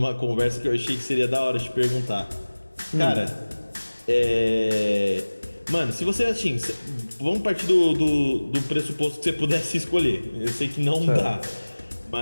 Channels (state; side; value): inverted; both; correlation -1.00